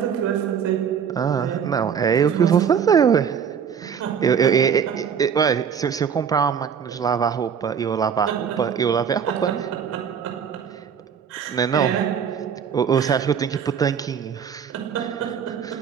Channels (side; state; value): left; quieter; 7.4 dB